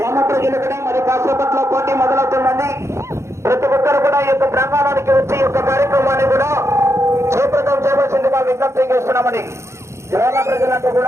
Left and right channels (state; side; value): late; left; 0.13 ms